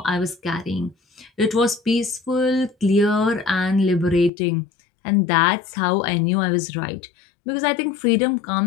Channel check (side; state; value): right; drops out; at 4.3 s